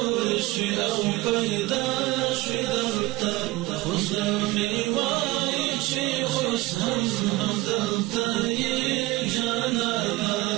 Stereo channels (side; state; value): left; quieter; 20.0 dB